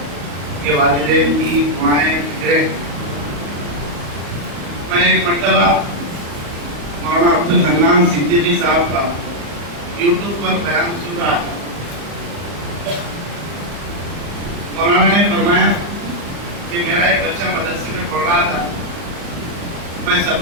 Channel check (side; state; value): left; late; 35 ms